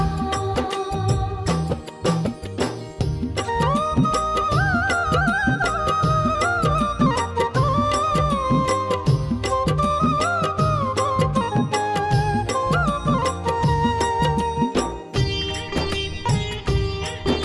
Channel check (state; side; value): identical; both; correlation 1.00